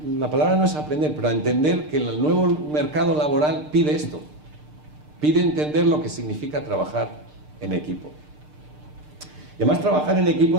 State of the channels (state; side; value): late; left; 6.6 ms